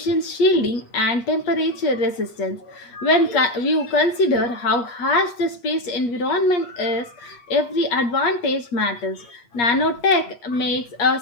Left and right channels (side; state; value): right; late; 8.5 ms